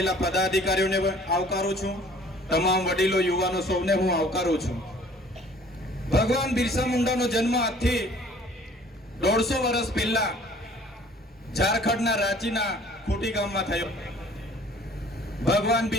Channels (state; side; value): normal; both; correlation 0.53